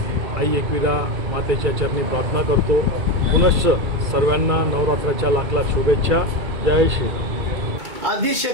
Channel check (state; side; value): late; left; 2.3 ms